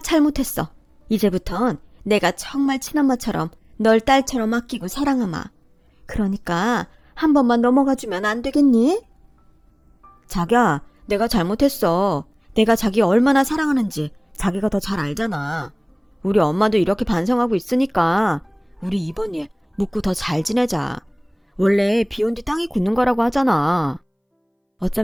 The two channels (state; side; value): identical; both; correlation 1.00